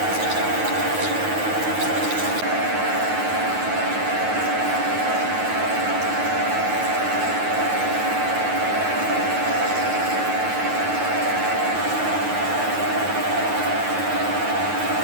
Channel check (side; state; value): left; late; 9.4 ms